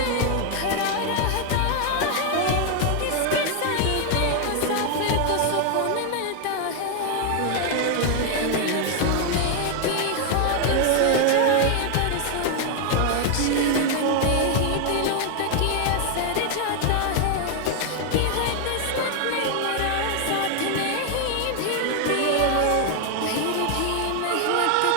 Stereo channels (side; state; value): both; different; correlation 0.00